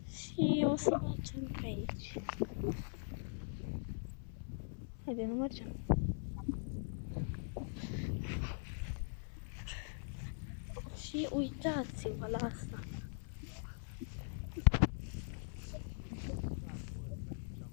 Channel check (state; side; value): silent; right; 50 dB below the other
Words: Și o să mergem pe aici. Haide, nu mergem. Și uitați-vă la asta.